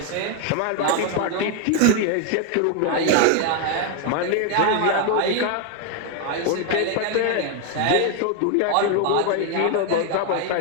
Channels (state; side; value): different; both; correlation 0.01